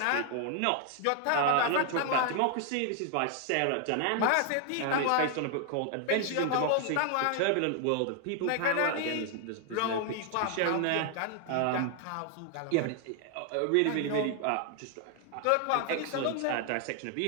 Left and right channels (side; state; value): both; different; correlation 0.00